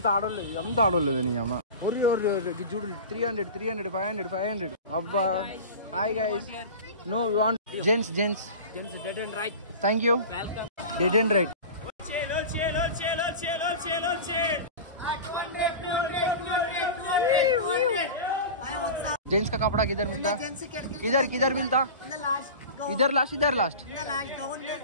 ఆడోలేదు నీ అమ్మ. చూడు 300 500 అబ్బా. Hi guys. No you want gents dead and right. Thank you. Dead and right. Gents का कपड़ा किधर मिलता? किधर मिलता? इधर लास्ट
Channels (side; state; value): both; inverted; correlation -0.31